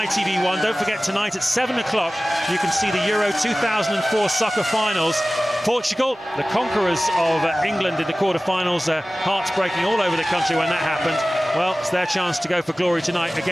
Don't forget, tonight at 7 o'clock, you can see the Euro 2004 soccer finals. Portugal, the conquerors of England in the quarterfinals, hearts breaking all over the country when that happened. Well, it's their chance to go for glory tonight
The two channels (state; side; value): normal; both; correlation 0.97